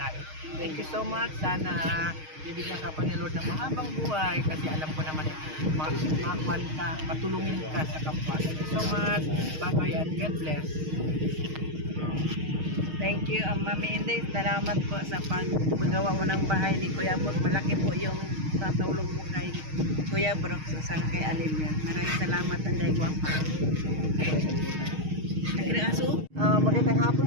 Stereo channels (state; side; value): late; left; 6.4 ms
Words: Thank you so much. Sana bibigyan ka pa ni Lord ng mahabang buhay kasi alam ko naman makakuan ka, matulungin ka sa kapwa. Thank you so much. Bye-bye and God bless. Thank you, Mami Inday. Salamat po sa paggawa mo ng bahay ni Kuya Brooks. Malaki po yung tatulong mo kay Kuya Brooks sa kay Alimyon. Maraming salamat, Inday Guapa. Magandang hapon